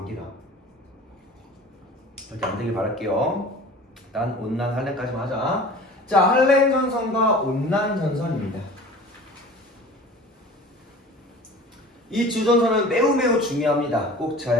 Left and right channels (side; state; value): both; normal; correlation 0.42